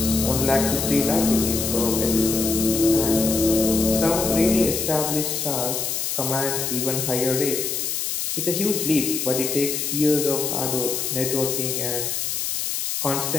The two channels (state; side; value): noise; left; hiss, 2 dB below the sound